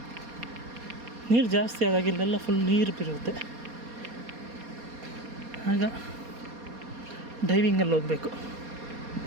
ನೀರು ಜಾಸ್ತಿ ಆದಾಗ ಇಲ್ಲೆಲ್ಲ ಫುಲ್ ನೀರು ಬಿರುತ್ತೆ. ಆಗ ಡೈವಿಂಗಲ್ಲಿ ಹೋಗಬೇಕು.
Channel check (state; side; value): late; left; 4.2 ms